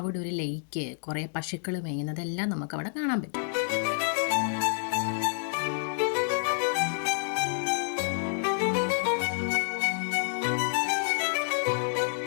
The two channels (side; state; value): right; silent; 59 dB below the other